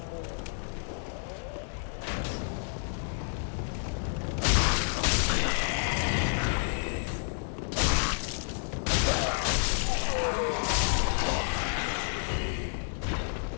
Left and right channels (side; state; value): right; silent; digital silence